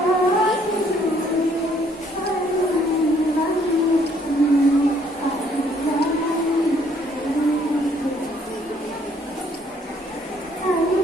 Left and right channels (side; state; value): both; normal; correlation 0.65